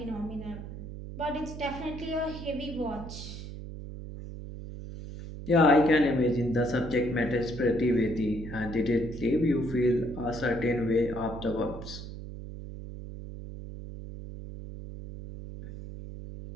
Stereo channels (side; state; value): right; noise; hum, 10 dB below the sound